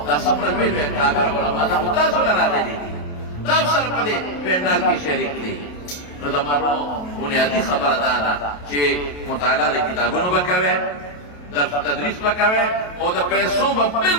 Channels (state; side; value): late; right; 28 ms